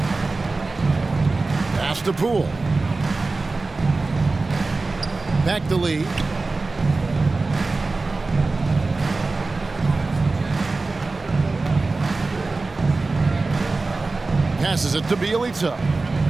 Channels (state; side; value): quieter; left; 3.6 dB